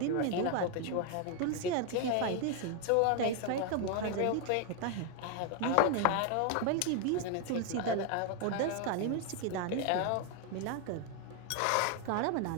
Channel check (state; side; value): different; both; correlation 0.01